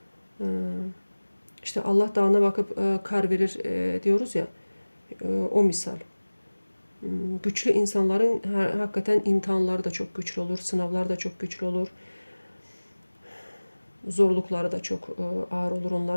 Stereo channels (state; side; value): inverted; both; correlation -1.00